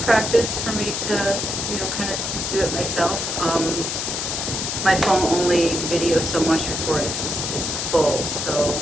practice for me to, kind of do it myself. My phone only videos so much before it's full, so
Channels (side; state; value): left; noise; hiss, 2 dB below the sound